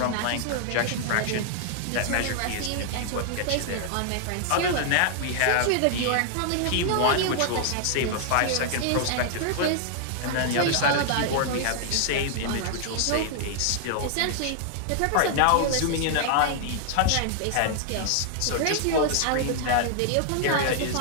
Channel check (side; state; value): both; different; correlation 0.00